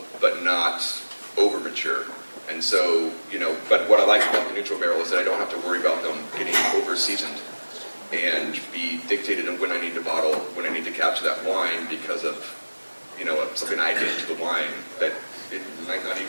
but not over mature. And so, but what I like about the neutral barrel is that I don't have to worry about them getting over seasoned and be dictated on when I need to bottle, when I need to capture that wine because of, something I did to the wine that it might not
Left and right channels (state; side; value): inverted; both; correlation -1.00